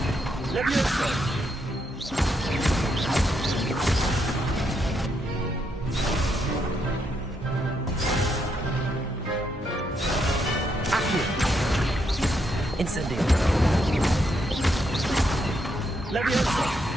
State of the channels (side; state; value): both; normal; correlation 0.78